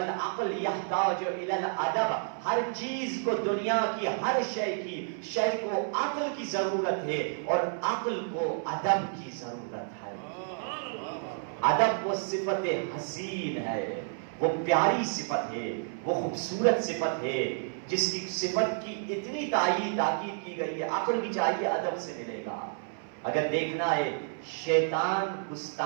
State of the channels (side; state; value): left; silent; 58 dB below the other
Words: یحتاج الی الادب، ہر چیز کو دنیا کی ہر شے کو عقل کی ضرورت ہے اور عقل کو ادب کی ضرورت ہے۔ ادب وہ صفت حسین ہے، وہ پیاری صفت ہے، وہ خوبصورت صفت ہے جس کی صفت کی اتنی تاکید کی گئی ہے۔ عقل بھی چاہیے ادب سے ملے گا۔ اگر دیکھنا ہے شیطان